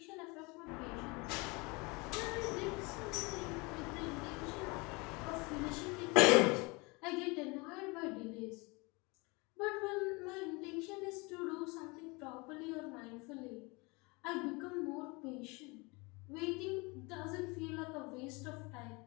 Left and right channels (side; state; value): right; quieter; 27.1 dB